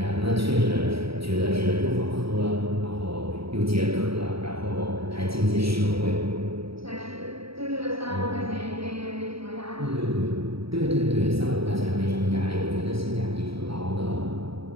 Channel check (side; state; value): left; late; 0.76 ms